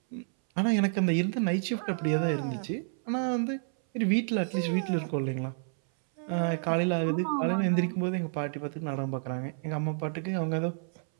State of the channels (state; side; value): silent; left; 58 dB below the other